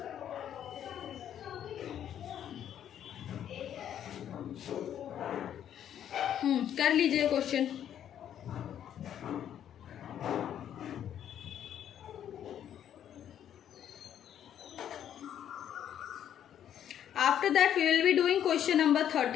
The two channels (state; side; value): quieter; right; 10.0 dB